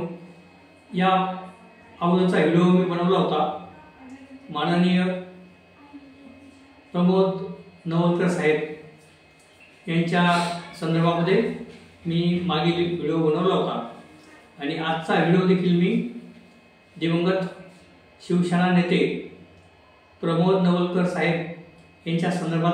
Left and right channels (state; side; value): identical; both; correlation 1.00